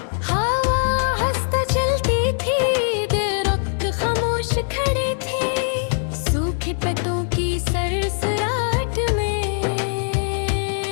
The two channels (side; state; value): right; silent; 65 dB below the other